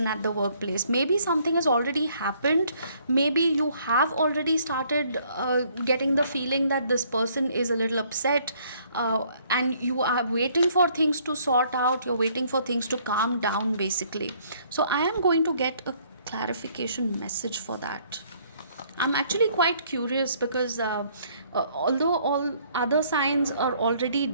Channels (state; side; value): inverted; both; correlation -0.64